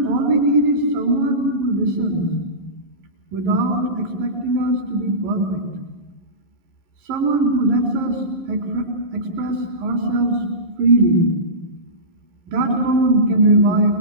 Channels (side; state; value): left; late; 11 ms